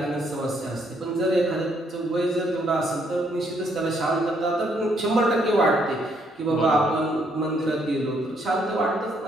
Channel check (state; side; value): normal; both; correlation 0.71